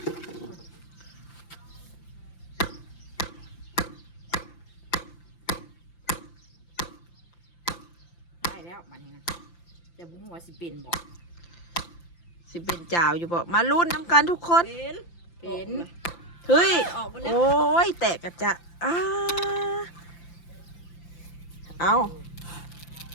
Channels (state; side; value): late; right; 5.8 ms